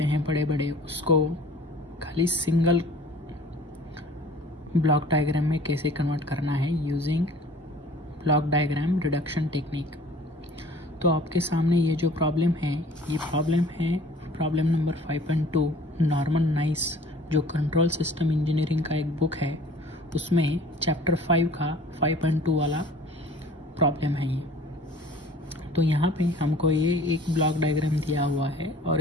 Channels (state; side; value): normal; both; correlation 0.49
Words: हैं बड़े बड़े, उसको खाली सिंगल ब्लॉक डायग्राम में कैसे कन्वर्ट करना है using block diagram reduction technique. तो आपके सामने ये जो प्रॉब्लम है, ये प्रॉब्लम है प्रॉब्लम नंबर 5.2 नॉर्मन नाइस, जो कंट्रोल सिस्टम इंजीनियरिंग का एक बुक है, उसमें चैप्टर 5 का 5.2 वाला प्रॉब्लम है ये। तो यहाँ पे हमको ये एक ब्लॉक डायग्राम दिया हुआ है और